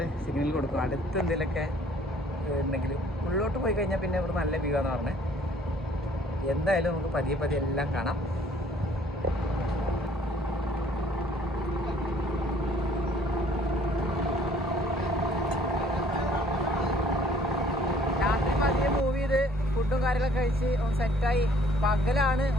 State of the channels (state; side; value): normal; both; correlation 0.58